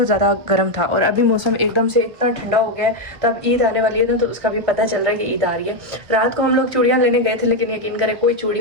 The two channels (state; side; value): late; left; 1.3 ms